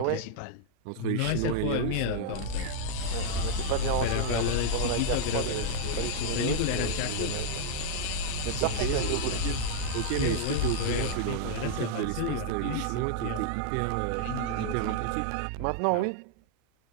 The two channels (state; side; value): different; both; correlation -0.01